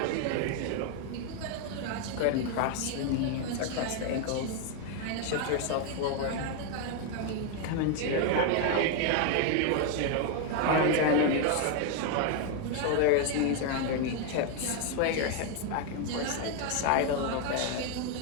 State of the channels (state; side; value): different; both; correlation 0.01